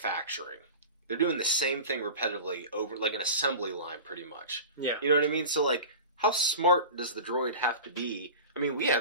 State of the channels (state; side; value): inverted; both; correlation -0.33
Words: They're doing the same thing repetitively over, like, an assembly line, pretty much. Yeah. You know what I mean? So, like, how smart does the droid have to be? I mean, we